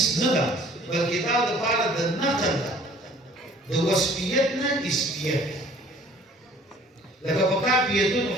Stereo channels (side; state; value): both; normal; correlation 0.53